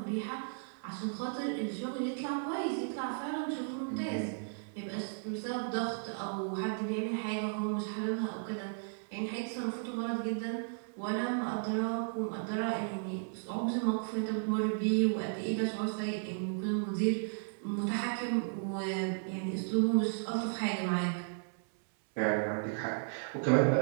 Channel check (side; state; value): left; silent; 55 dB below the other